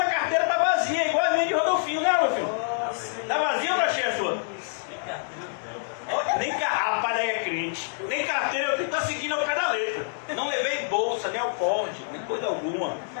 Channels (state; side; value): silent; right; digital silence